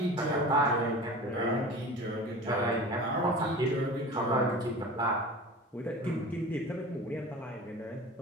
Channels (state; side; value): normal; both; correlation 0.37